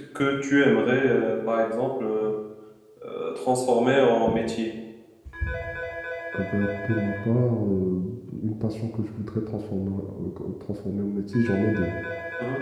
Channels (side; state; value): both; identical; correlation 1.00